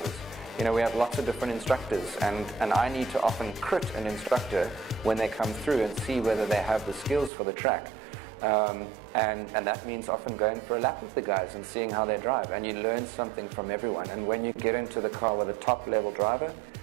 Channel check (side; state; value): left; drops out; at 7.3 s